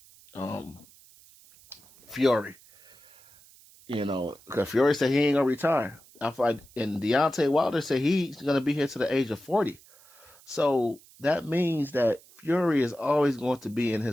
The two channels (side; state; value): right; noise; hiss, 25 dB below the sound